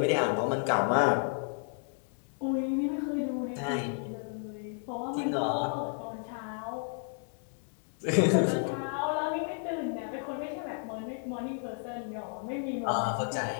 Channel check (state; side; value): silent; right; 56 dB below the other